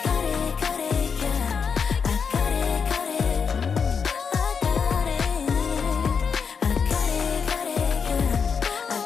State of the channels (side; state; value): right; quieter; 6.1 dB